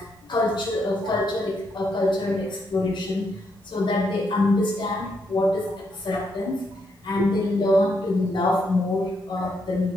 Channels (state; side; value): normal; both; correlation 0.78